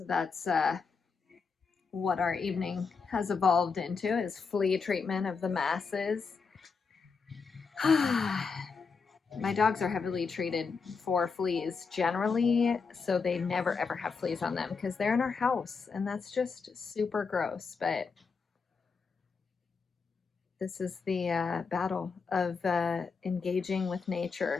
that's what our evening has evolved into, is flea treatment of the masses. My dogs are heavily treated for fleas generally, so they never ever have fleas on them because they're in our house, and that's just super gross. But this is the battle of engaging with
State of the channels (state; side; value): quieter; right; 5.1 dB